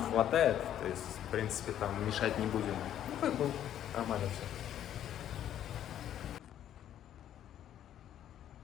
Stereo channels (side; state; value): right; quieter; 10.9 dB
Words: хватает, то есть, в принципе, там мешать не будем. Ну, как бы нормально все.